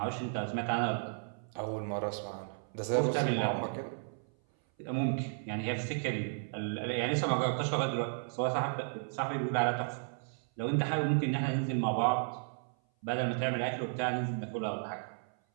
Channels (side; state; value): left; silent; 55 dB below the other